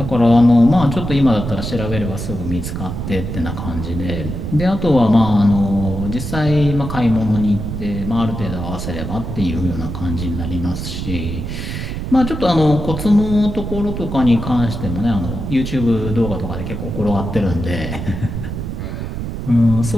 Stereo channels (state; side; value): noise; right; rumble, 5 dB below the sound